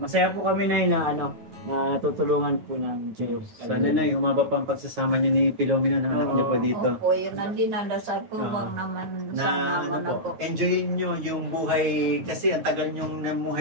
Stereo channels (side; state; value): left; late; 9.4 ms